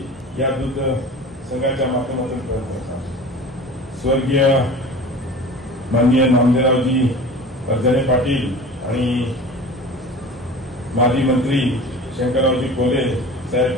या दूध संघाच्या माध्यमातून प्रयत्न करतात। स्वर्गीय माननीय नामदेवरावजी परजने पाटील आणि माजी मंत्री शंकररावजी कोले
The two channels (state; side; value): normal; both; correlation 0.38